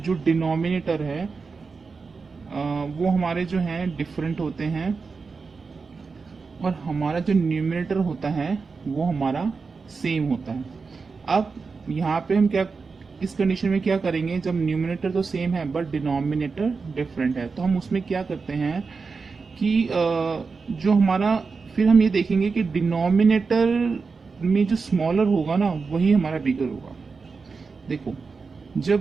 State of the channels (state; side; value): quieter; left; 4.7 dB